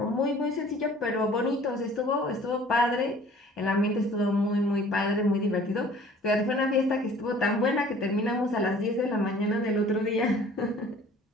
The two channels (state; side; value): normal; both; correlation 0.51